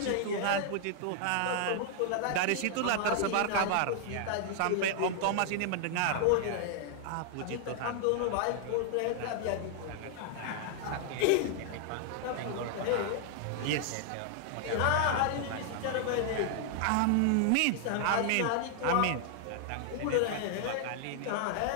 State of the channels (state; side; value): different; both; correlation 0.00